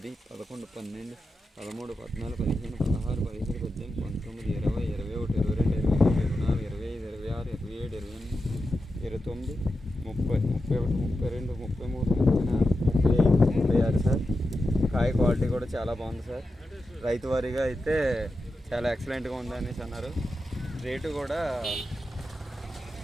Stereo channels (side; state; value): both; normal; correlation 0.90